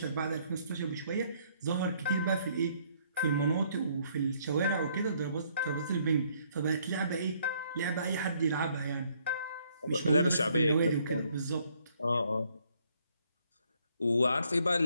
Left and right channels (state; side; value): inverted; both; correlation -0.67